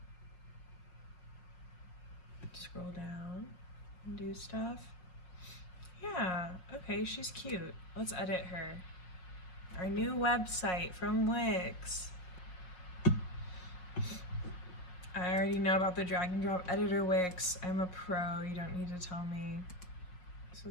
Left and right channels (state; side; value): late; right; 5.5 ms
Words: Scroll down and do stuff. Yeah, okay, she's cute. Let's edit her. Our new website from Wix. I already know about the drag and drop editor Wix. I'm a pro, you don't need to tell me. So